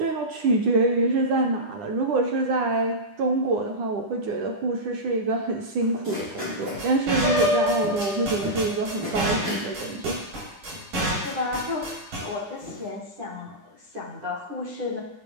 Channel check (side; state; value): left; late; 9.9 ms